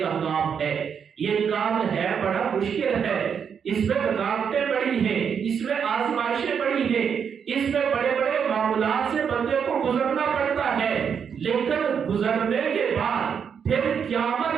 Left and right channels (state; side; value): quieter; left; 7.2 dB